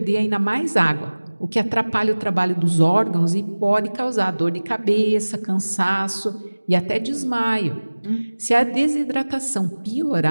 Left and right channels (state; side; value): inverted; both; correlation -1.00